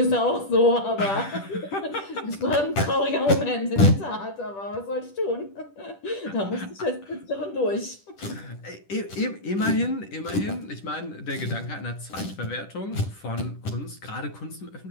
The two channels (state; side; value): late; right; 10 ms